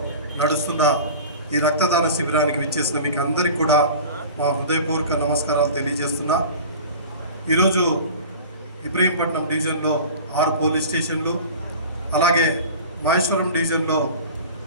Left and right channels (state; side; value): inverted; both; correlation -0.38